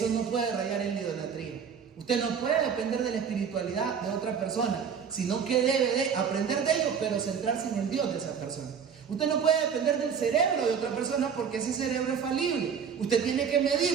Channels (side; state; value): left; quieter; 7.0 dB